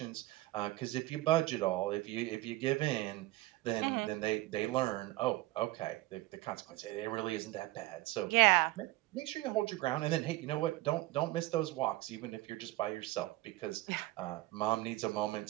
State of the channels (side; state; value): left; quieter; 18.6 dB